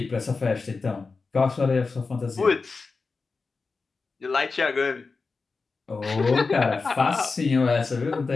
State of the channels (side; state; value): right; quieter; 4.3 dB